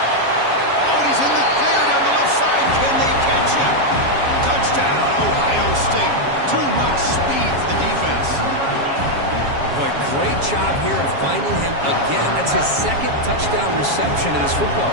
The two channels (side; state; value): left; late; 7.3 ms